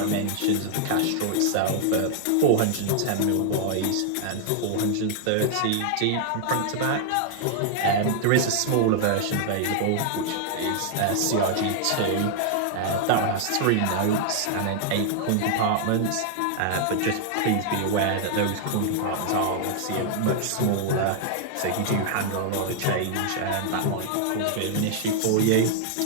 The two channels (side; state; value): both; different; correlation -0.01